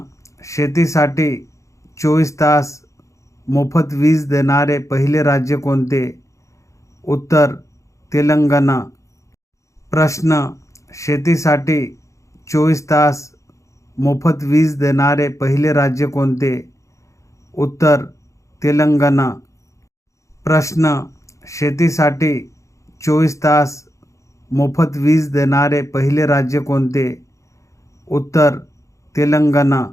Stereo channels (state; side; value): late; right; 0.15 ms